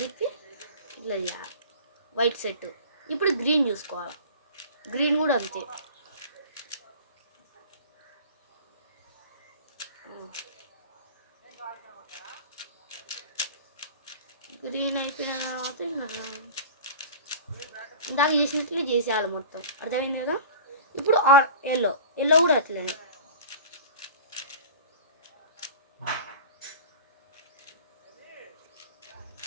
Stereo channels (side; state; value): both; inverted; correlation -0.38